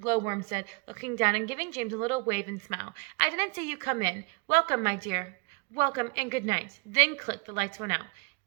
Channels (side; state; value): left; quieter; 31.8 dB